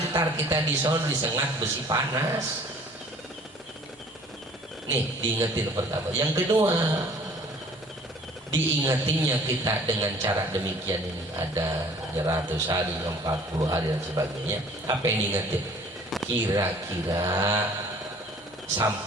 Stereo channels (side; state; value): both; normal; correlation 0.52